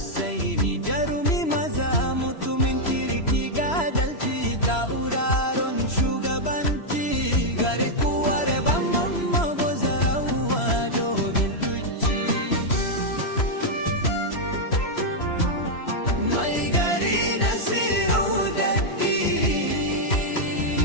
jarumi maza mutumin kirki ga adalci, tauraron shugabanci gari kuwar ban mamma. Bozarawa dogon duci, mai gari Nasiru Daddi,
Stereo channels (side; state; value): right; late; 3.0 ms